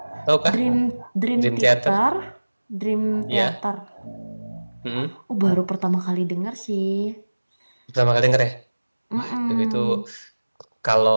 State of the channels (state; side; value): inverted; both; correlation -1.00